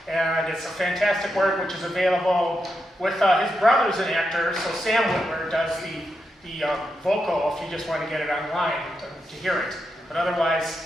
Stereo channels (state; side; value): normal; both; correlation 0.85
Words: and it's a fantastic work which is available with his brother's an actor, so Sam Whitwer does the vocal if you just want to get it online to hear it. But otherwise,